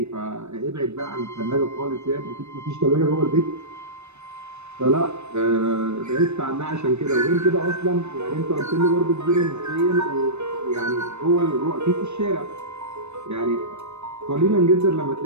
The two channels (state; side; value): late; left; 0.81 ms